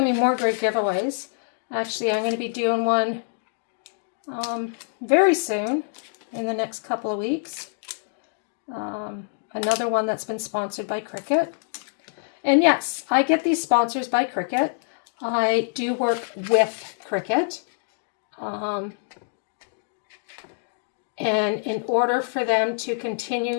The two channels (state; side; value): silent; right; digital silence